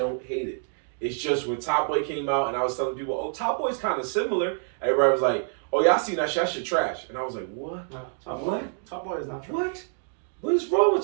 hate it. It's just when Top Boy came out and I was telling people, oh, Top Boy's kind of similar. Everybody was like, oh, y'all seen that shit? That shit trash. And I was like, what? No, What? Top Boy is not trash. What? What is wrong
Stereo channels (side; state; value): left; silent; digital silence